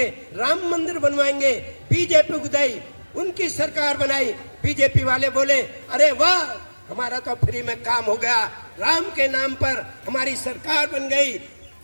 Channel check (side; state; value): both; inverted; correlation -1.00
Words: राम मंदिर बनवाएंगे, बीजेपी को दी, उनकी सरकार बनाई। बीजेपी वाले बोले अरे वाह हमारा तो फ्री में काम हो गया, राम के नाम पर हमारी सरकार बन गई।